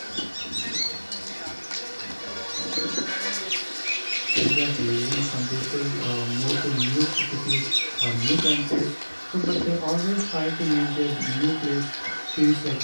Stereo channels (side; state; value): both; inverted; correlation -1.00